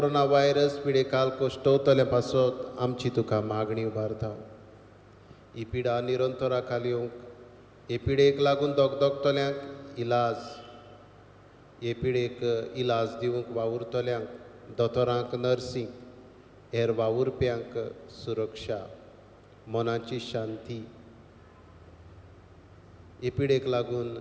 व्हायरस पिडेकाल कोश्टवतले पासत आमची तुका मागणी उबारता. ही पिडा निरंतरा खाली येवंक, हे पिडेक लागून दोगदोगतल्यांक इलाज, हे पिडेक इलाज दिवंक वावुरतल्यांक, दोतोरांक नर्सींक, हेर वावुरप्यांक सुरक्षा, मनाची शांती. हे पिडेक लागून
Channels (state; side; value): identical; both; correlation 1.00